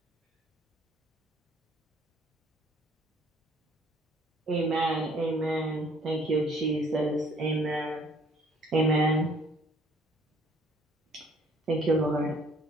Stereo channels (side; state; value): both; normal; correlation 0.58